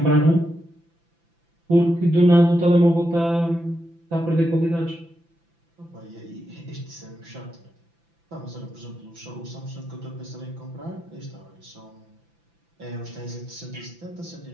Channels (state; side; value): late; left; 5.9 ms